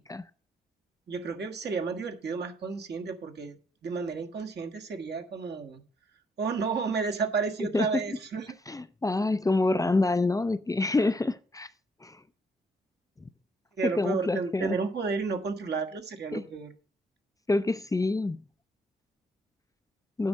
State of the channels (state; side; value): normal; both; correlation 0.71